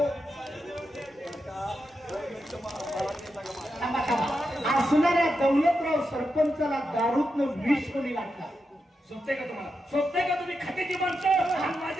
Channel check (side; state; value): both; normal; correlation 0.87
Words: थांबा, थांबा. असणाऱ्या दौलतराव सरपंचाला दारूतनं विष कोणी लागला? सोबते का तुम्हाला? सोबते का तुम्ही खात्याची माणसं आणि